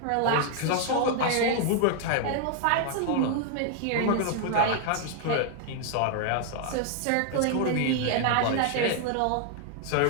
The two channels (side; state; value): both; different; correlation 0.00